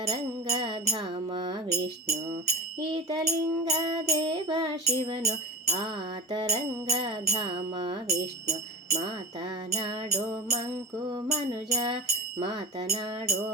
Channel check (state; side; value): normal; both; correlation 0.30